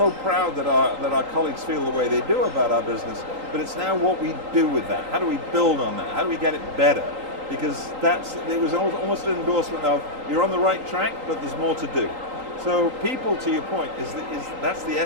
proud that our colleagues feel the way they do about our business, but it's now what we do with that. How do we build on that? How do we get it better? Because it was almost an endorsement of, you're on the right track, but there's more to do. So people, to your point, that's the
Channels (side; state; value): left; late; 3.8 ms